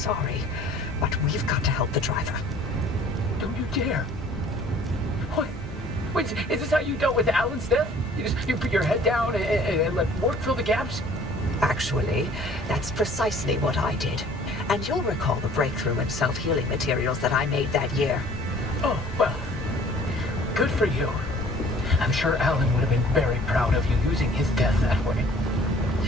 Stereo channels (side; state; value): both; normal; correlation 0.53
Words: but we've got to help the driver. Don't you dare. What? Wait, is this how you dealt with Alan's death? You put your head down and let work fill the gaps? Actually, that's precisely what I did. And you'll recall the breakthrough in self-healing materials that I made that year. Oh, well, good for you. I'm sure Alan would have been very proud of you using his death that way.